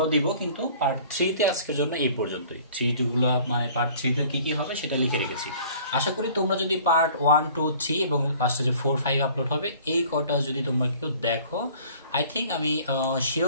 দিব, কিন্তু পার্ট 3-তে আজকের জন্য এই পর্যন্তই। 3 মানে পার্ট 3-তে কি কি হবে সেটা লিখে রেখেছি। আশা করি তোমরা যদি পার্ট 1 2 3 এবং লাস্টে যে 4 5 আপলোড হবে এই কটা যদি তোমরা কেউ দেখো, আই থিঙ্ক আমি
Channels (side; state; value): both; inverted; correlation -0.51